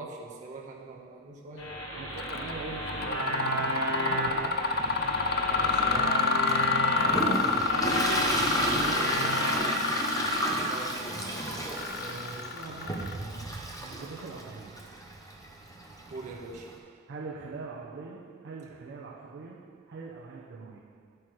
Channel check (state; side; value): normal; both; correlation -0.01